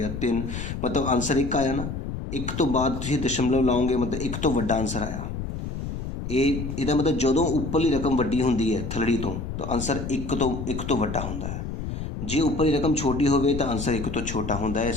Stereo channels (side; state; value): left; noise; rumble, 6 dB below the sound